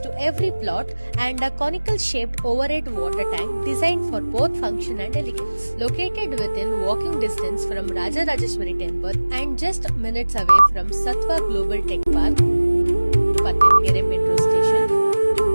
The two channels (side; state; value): both; inverted; correlation -1.00